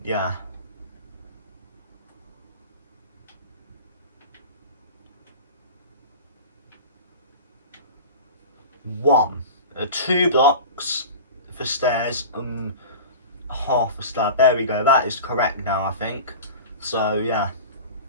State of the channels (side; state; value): both; inverted; correlation -0.34